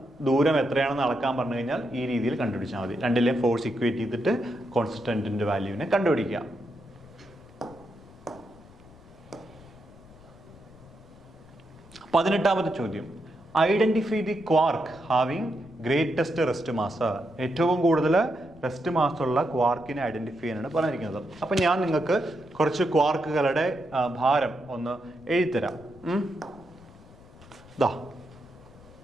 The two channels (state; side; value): noise; left; rumble, 23 dB below the sound